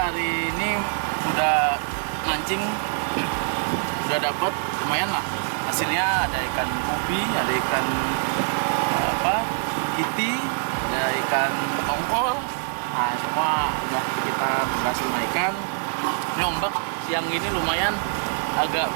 ini udah mancing, udah dapet lumayan lah. Hasilnya ada ikan ubi, ada ikan kiti, ada ikan tongkol. Nah, semua udah kita berhasil naikkan. Ini ombak siang ini lumayan agak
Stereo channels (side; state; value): left; silent; 58 dB below the other